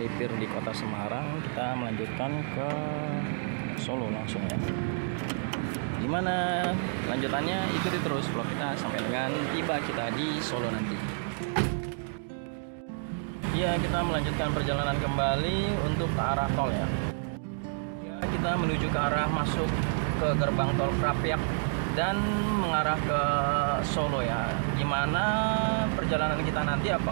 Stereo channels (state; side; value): silent; left; digital silence